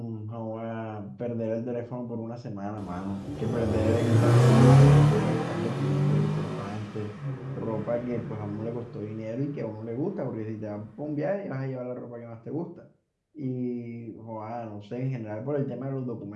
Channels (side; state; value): both; identical; correlation 1.00